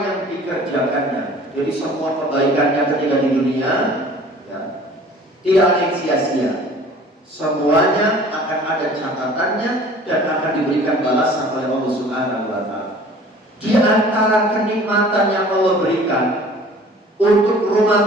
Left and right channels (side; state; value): both; normal; correlation 0.48